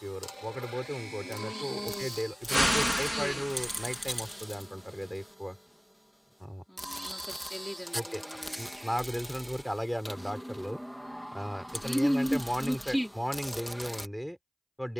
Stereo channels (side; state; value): both; identical; correlation 1.00